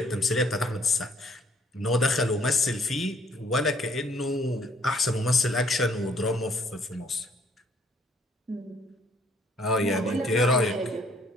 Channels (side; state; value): both; normal; correlation 0.63